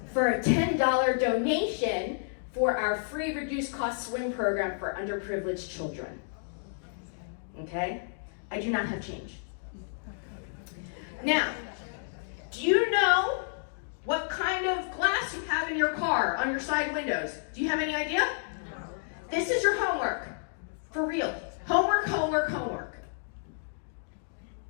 for a $10 donation for our free reduced cost swim program for underprivileged children. Okay? I do not have change. Now, do you know what kind of glass you have in your car on your side windows? Do you have any idea? This is your homework. For real. Homework, homework, homework.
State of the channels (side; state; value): right; silent; digital silence